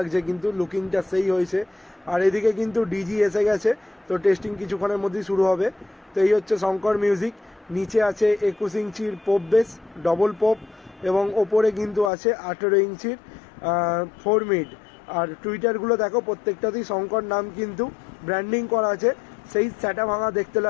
কিন্তু লুকিংটা সেই হয়েছে। আর এদিকে কিন্তু ডিজি এসে গেছে, তো টেস্টিং কিছুক্ষণের মধ্যেই শুরু হবে। তো এই হচ্ছে শঙ্কর মিউজিক। নিচে আছে 21 ইঞ্চির পোপ বেস, ডবল পোপ, এবং ওপরে কিন্তু আছে 18 ইঞ্চির 4 মিড। আর টুইটারগুলো দেখো, প্রত্যেকটাতেই শঙ্কর নাম কিন্তু ব্র্যান্ডিং করা আছে। সেই স্যাটা ভাঙা দেখতে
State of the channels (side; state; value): right; drops out; at 12.1 s